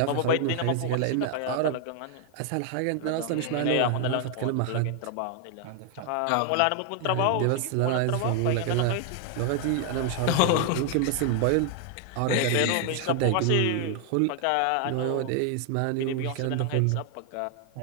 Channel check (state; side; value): different; both; correlation 0.00